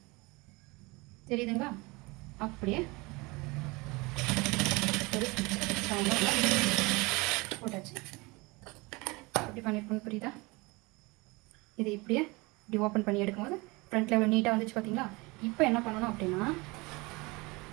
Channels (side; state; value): left; quieter; 24.9 dB